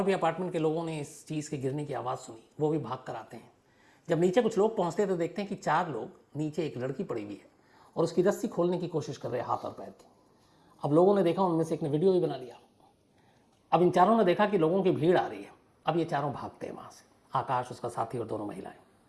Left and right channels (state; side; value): identical; both; correlation 1.00